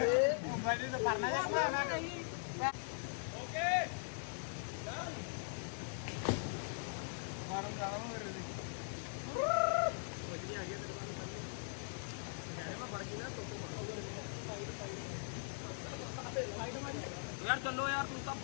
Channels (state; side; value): silent; right; digital silence